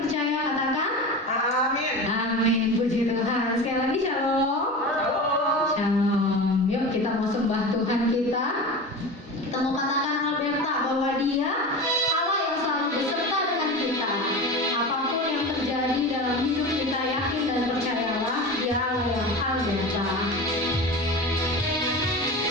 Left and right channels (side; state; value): both; normal; correlation 0.29